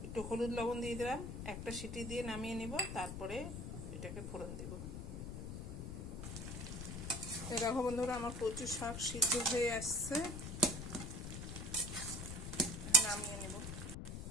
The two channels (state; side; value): noise; left; rumble, 6 dB below the sound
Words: একটু হলুদ লবণ দিয়ে দিলাম, একটা সিটি দিয়ে নামিয়ে নিব, তারপরে এটাকে ফোড়ন দেব। দেখো বন্ধুরা, আমার কচু শাক সিদ্ধ হয়ে আসছে, নামিয়ে নেব।